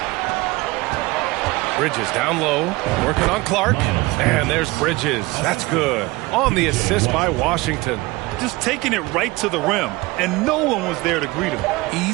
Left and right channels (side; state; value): left; quieter; 21.7 dB